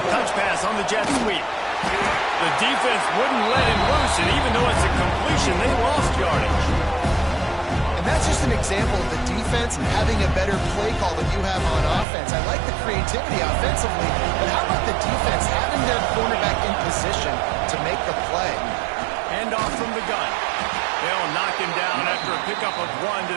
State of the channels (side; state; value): left; drops out; at 12.1 s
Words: Touch pass on the jet sweep. The defense wouldn't let him loose, and even though it's a completion, they lost yardage. And that's just an example of the defense having a better play call than you have on offense. I like the creativity offensively, but how about the defense having their cornerback in position to make the play? Hand off from the gun. They'll knock him down after a pickup of 1 to